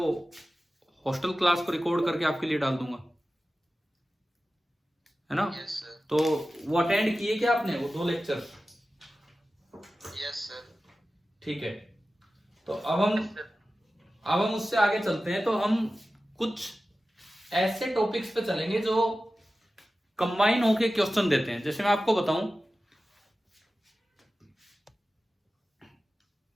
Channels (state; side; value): normal; both; correlation 0.95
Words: हॉस्टल क्लास को रिकॉर्ड करके आपके लिए डाल दूंगा, है ना? Yes sir. तो वो अटेंड किए क्या आपने, वो दो लेक्चर? Yes sir. ठीक है, तो अब हम उससे आगे चलते हैं। तो हम कुछ ऐसे टॉपिक्स पे चलेंगे जो कंबाइन होके क्वेश्चन देते हैं। जैसे मैं आपको बताऊं,